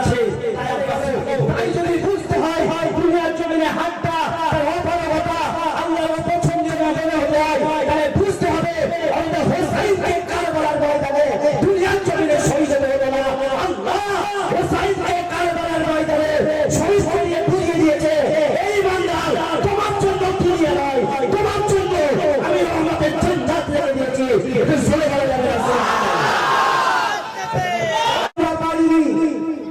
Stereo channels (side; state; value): both; identical; correlation 1.00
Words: আছে। তাই যদি বুঝতে হয় দুনিয়ার জমিনে হাতটা তার অপারগতা আল্লাহর অপছন্দের মনে হতে হয়, তাহলে বুঝতে হবে আমাদের হোসাইনকে কারবালার ময়দানে দুনিয়ার জমিনে শহীদ হতে হবে না। আল্লাহ হোসাইনকে কারবালার ময়দানে শহীদ করে বুঝিয়ে দিয়েছে, এই বান্দা তোমার জন্য দুনিয়া নয়, তোমার জন্য আমি রহমতের জান্নাত রেখে দিয়েছি। এটা চলে গেল যাবে না।